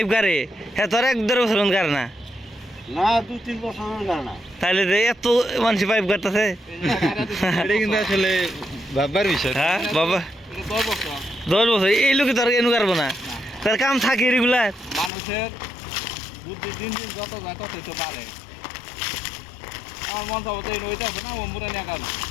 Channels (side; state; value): right; drops out; at 15.1 s